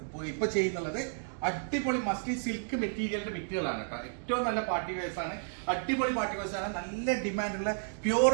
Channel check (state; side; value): silent; left; digital silence